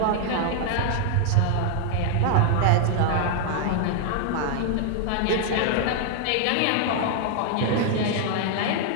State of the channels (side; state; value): both; different; correlation 0.00